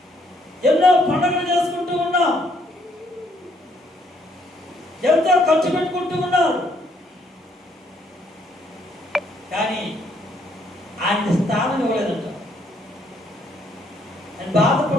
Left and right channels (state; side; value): normal; both; correlation 0.69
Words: ఎన్నో పండుగలు చేసుకుంటూ ఉన్నాం, ఎంతో ఖర్చు పెట్టుకుంటూ ఉన్నారు. కానీ ఆయన స్థానం ఇవ్వలేదంట. ఆయన